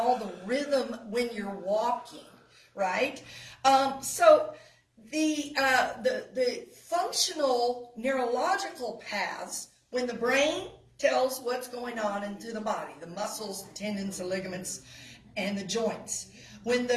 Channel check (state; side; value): identical; both; correlation 1.00